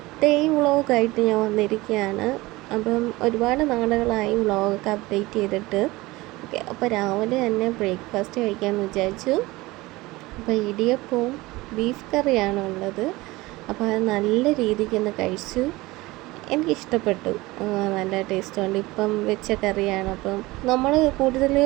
ഡേ വ്ളോഗായിട്ട് ഞാൻ വന്നിരിക്കുകയാണ്. അപ്പം ഒരുപാട് നാളുകളായി വ്ളോഗൊക്കെ അപ്ഡേറ്റ് ചെയ്തിട്ട്. ഓക്കെ, അപ്പോൾ രാവിലെ തന്നെ ബ്രേക്ക്ഫാസ്റ്റ് കഴിക്കാമെന്ന് വിചാരിച്ചു. അപ്പോൾ ഇടിയപ്പവും ബീഫ് കറിയാണ് ഉള്ളത്. അപ്പോൾ അത് നല്ല രീതിക്ക് ഒന്ന് കഴിച്ചു. എനിക്കിഷ്ടപ്പെട്ടു, നല്ല ടേസ്റ്റുണ്ട്. ഇപ്പം വെച്ച കറിയാണ്. അപ്പം നമ്മൾ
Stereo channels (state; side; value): quieter; left; 20.6 dB